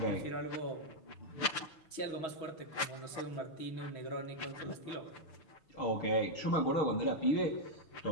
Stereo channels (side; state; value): right; late; 6.7 ms